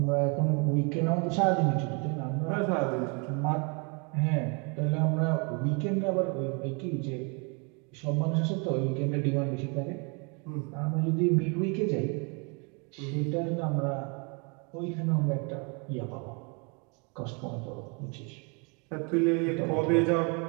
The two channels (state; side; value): quieter; left; 33.5 dB